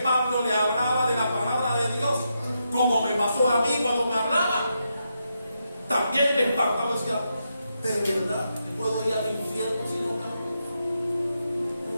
Pablo le hablaba de la palabra de Dios, como me pasó a mí cuando me hablaba, también me espantaba y decía, de verdad, ¿me puedo ir al infierno si no cambio?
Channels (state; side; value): inverted; both; correlation -0.84